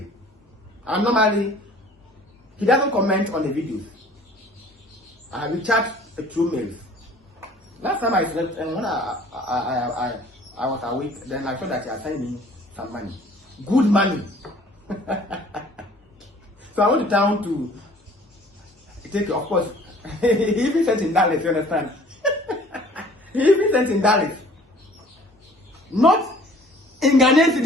And normally, he doesn't comment on the videos. We chat through mails. Last time I slept, and when I was awake, then I saw that he had sent me some money. Good money. So I went to town to take, of course, he even sent in Dallas, you understand? He even sent in Dallas. Not in Ghanaian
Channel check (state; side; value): normal; both; correlation 0.52